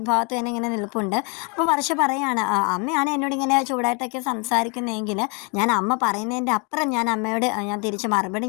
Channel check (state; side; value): quieter; right; 34.0 dB